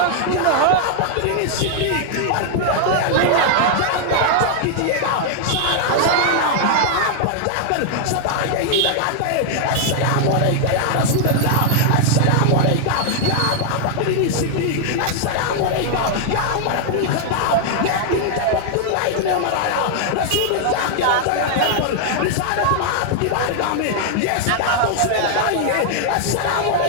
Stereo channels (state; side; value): different; both; correlation 0.00